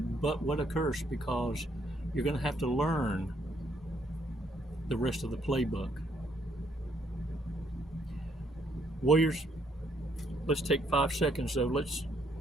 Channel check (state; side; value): normal; both; correlation 0.70